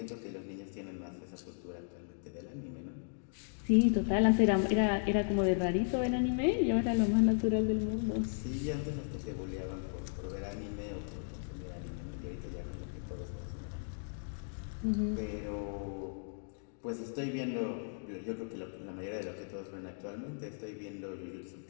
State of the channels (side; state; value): right; silent; digital silence